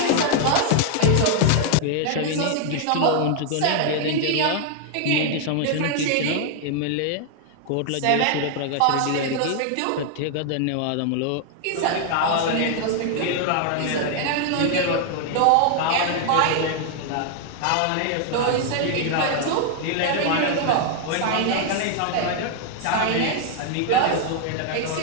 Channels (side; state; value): both; different; correlation 0.00